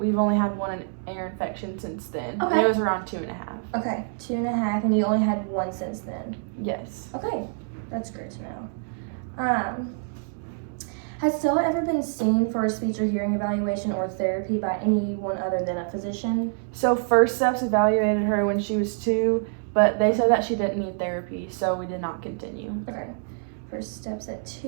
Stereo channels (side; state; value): left; silent; digital silence